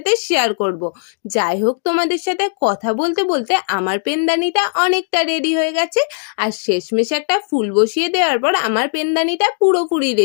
শেয়ার করব। যাই হোক, তোমাদের সাথে কথা বলতে বলতে আমার পেনদানিটা অনেকটা রেডি হয়ে গেছে। আর শেষমেশ একটা ফুল বসিয়ে দেওয়ার পর আমার পেনদানিটা পুরোপুরি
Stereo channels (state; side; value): silent; right; digital silence